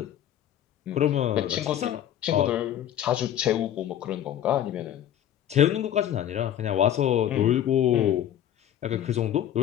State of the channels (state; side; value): quieter; right; 10.9 dB